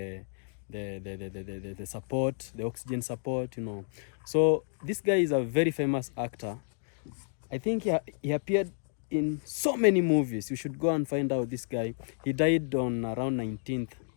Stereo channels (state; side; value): silent; right; digital silence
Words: support, the oxygen support, you know. So this guy is a very famous actor. I think he appeared in so many movies. You should go and find out this guy. He died on around 19th